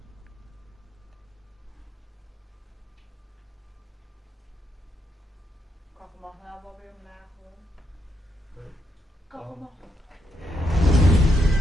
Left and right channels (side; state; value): both; normal; correlation 0.79